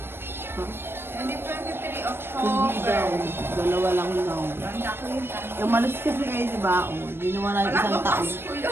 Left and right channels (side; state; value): left; late; 0.11 ms